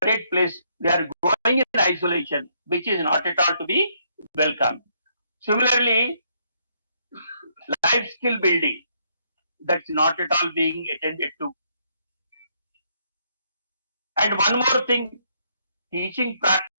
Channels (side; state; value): both; inverted; correlation -0.72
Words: place. They are growing in isolation, which is not at all to be welcome. Similarly, life skill building, that's not at all being attended to. And one more thing, teaching